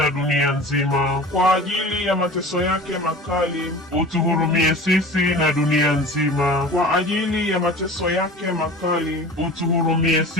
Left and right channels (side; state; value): both; normal; correlation 0.38